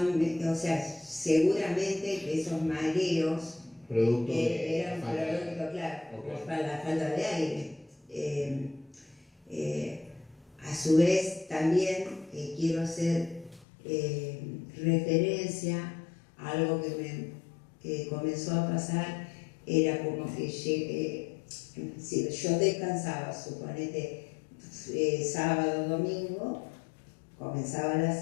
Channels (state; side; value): drops out; right; at 13.7 s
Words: o sea, seguramente que esos mareos eran producto, claro, por la falta de aire. A su vez, también quiero hacer referencia a algo que comenzó a pasar, era como que si yo descansaba, suponete, sábado, domingo, comenzaba la